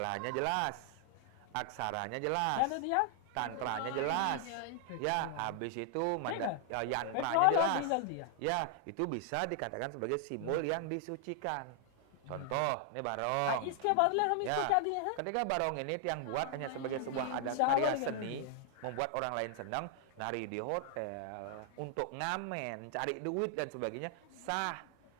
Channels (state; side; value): different; both; correlation 0.00